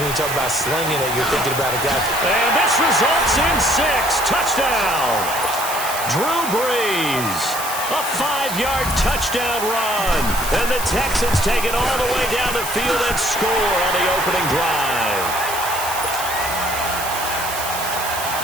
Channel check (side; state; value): right; noise; hiss, 7 dB below the sound